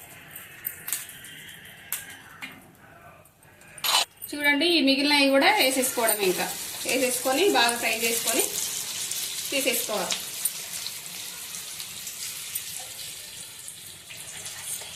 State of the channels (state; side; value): identical; both; correlation 1.00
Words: చూడండి ఈ మిగిలినవి కూడా వేసేసుకోవడం. ఇంకా వేసేసుకొని బాగా ఫ్రై చేసుకొని తీసేసుకోవాలి.